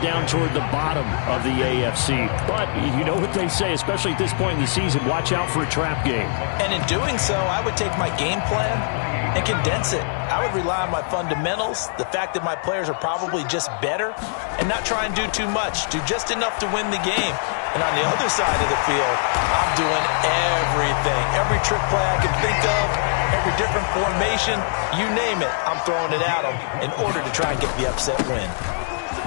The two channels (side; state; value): right; silent; digital silence